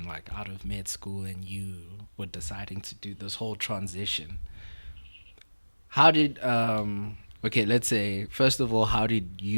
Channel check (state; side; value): inverted; both; correlation -1.00